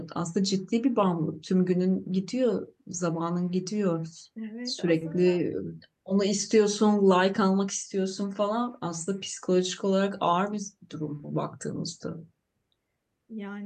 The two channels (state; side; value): identical; both; correlation 1.00